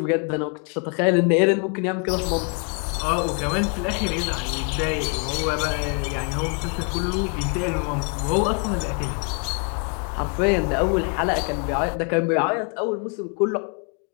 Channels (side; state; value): right; quieter; 36.4 dB